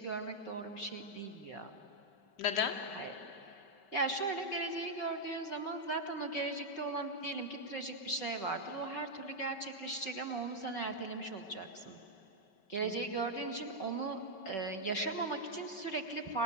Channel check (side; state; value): right; late; 5.2 ms